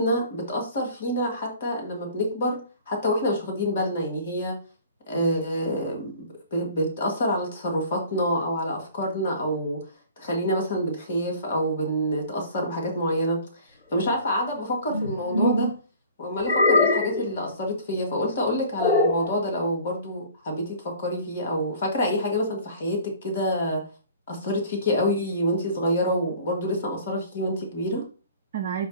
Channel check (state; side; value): inverted; both; correlation -0.47